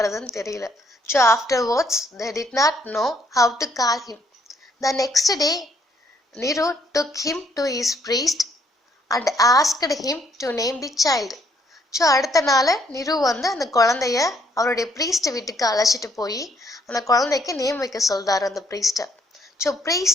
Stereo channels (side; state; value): both; normal; correlation 0.69